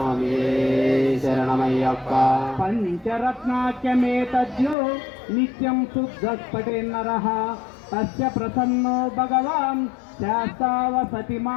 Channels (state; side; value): drops out; right; at 4.8 s